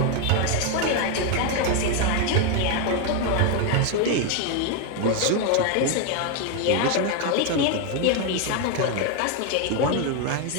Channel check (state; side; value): different; both; correlation 0.01